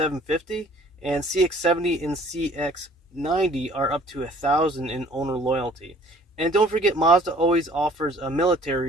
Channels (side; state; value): both; normal; correlation 0.54